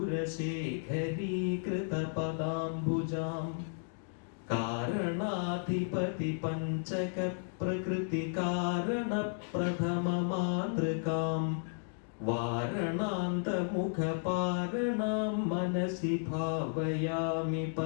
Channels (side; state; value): right; silent; digital silence